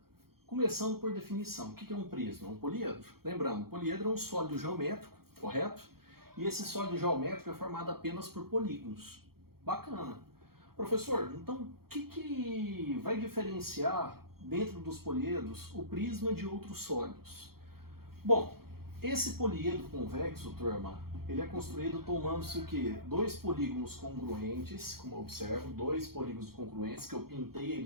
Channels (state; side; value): late; left; 0.94 ms